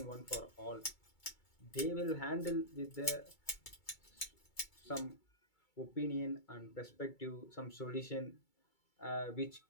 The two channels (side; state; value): right; late; 2.3 ms